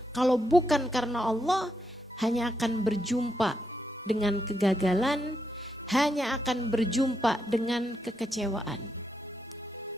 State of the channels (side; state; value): both; normal; correlation 0.82